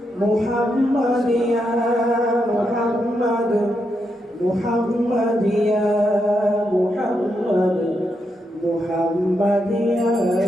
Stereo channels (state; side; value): normal; both; correlation 0.82